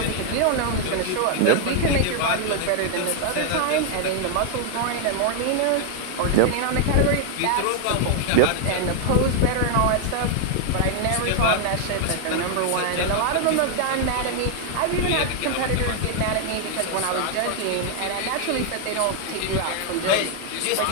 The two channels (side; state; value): both; different; correlation 0.00